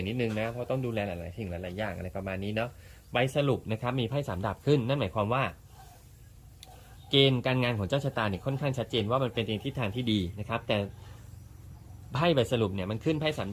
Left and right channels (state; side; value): identical; both; correlation 1.00